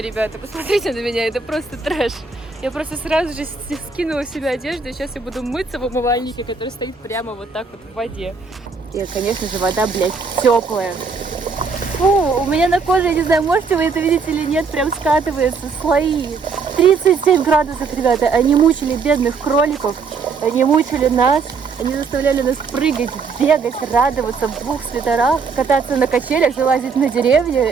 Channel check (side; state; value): left; quieter; 5.0 dB